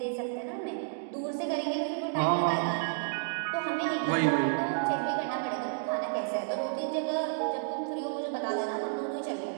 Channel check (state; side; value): silent; left; digital silence